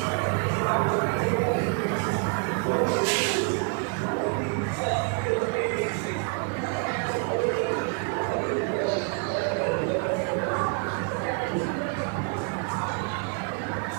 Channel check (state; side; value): quieter; left; 38.3 dB